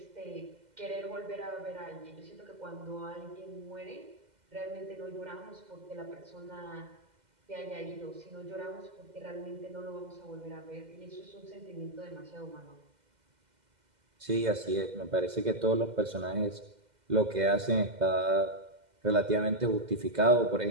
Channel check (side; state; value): left; late; 2.0 ms